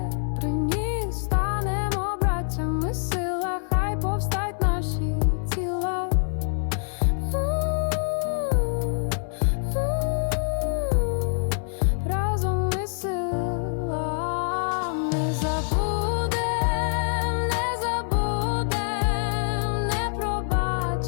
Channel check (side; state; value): right; silent; digital silence